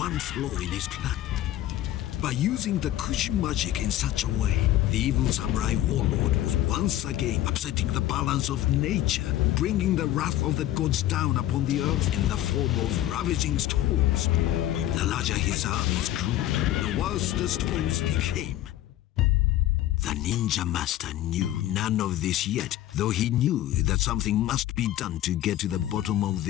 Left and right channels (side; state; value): right; quieter; 13.6 dB